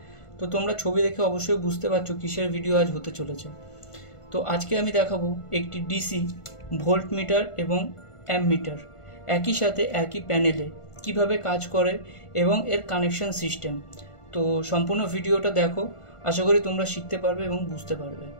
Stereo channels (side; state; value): right; late; 1.5 ms